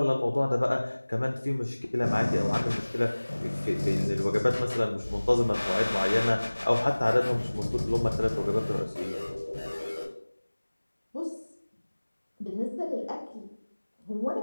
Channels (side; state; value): both; inverted; correlation -1.00